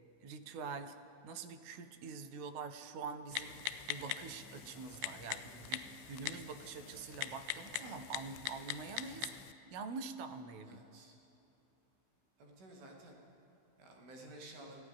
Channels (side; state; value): left; late; 15 ms